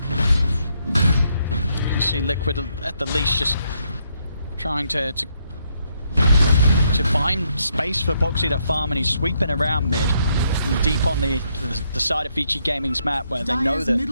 You see Liquid at the least just trying to find space for Boxy to farm, and he's sweeping around mid. Deep on the side of Vici Gaming's map, where they know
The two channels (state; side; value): inverted; both; correlation -0.75